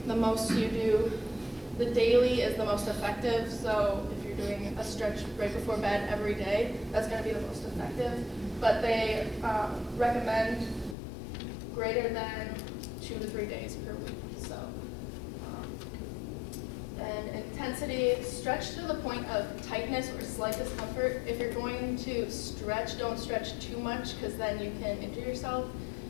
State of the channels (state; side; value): drops out; right; at 11.0 s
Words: the most you do, the daily is the most effective. So if you're doing a stretch right before bed every day, that's going to be the most effective. But they recommend greater than 2 to 3 days per week. So, and intensity, stretch to the point of tightness or slight discomfort. If you're going to stretch, don't stretch too much, because then you can injure yourself.